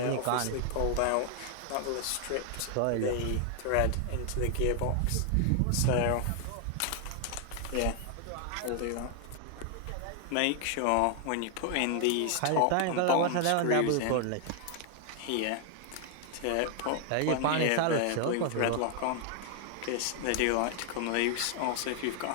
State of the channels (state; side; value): different; both; correlation 0.00